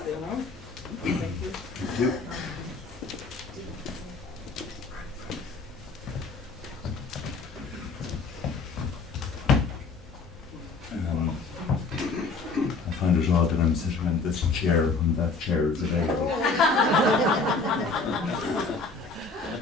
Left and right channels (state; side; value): quieter; right; 4.0 dB